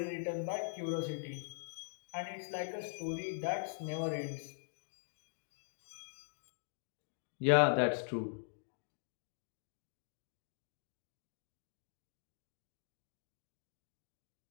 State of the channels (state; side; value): silent; right; digital silence